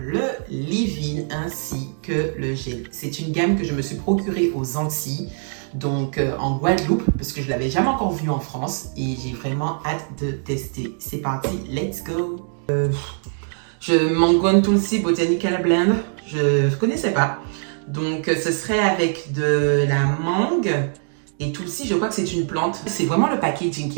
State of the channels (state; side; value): silent; left; 61 dB below the other